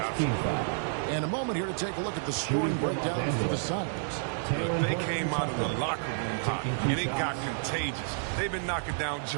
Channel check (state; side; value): silent; left; 58 dB below the other